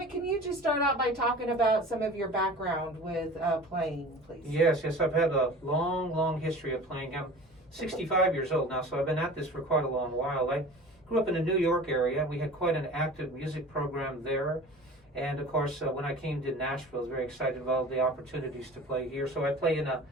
can you just start out by talking about some of your background with playing, please? Yes, I've had a long history of playing. I'm 65 years old now, so I've been at this for quite a long while. I grew up in the New York area. We had quite an active music program there. And of course, when I came to Nashville, I was very excited about all the opportunities to play here. So I play in a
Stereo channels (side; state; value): both; normal; correlation 0.40